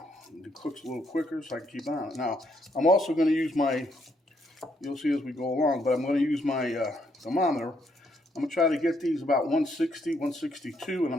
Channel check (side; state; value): both; normal; correlation 0.74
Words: It cooks a little quicker so I can keep on it. Now, I'm also going to use you'll see as we go along, but I'm going to use my thermometer. I'm going to try to get these about 160, 162, and